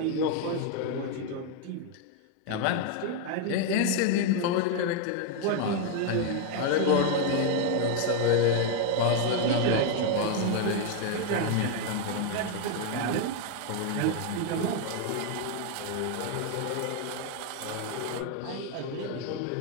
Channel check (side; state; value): both; different; correlation 0.01